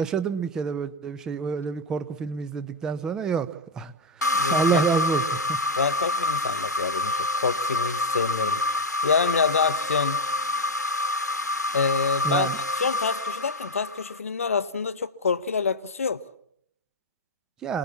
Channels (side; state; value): both; normal; correlation 0.03